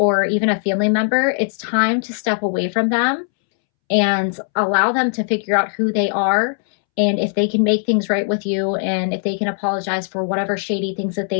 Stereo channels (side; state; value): right; silent; 66 dB below the other